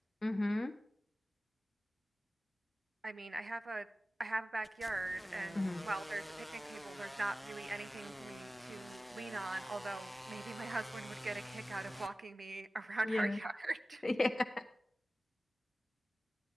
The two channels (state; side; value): normal; both; correlation 0.96